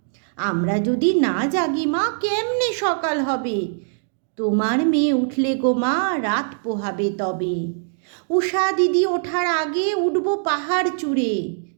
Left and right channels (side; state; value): left; silent; digital silence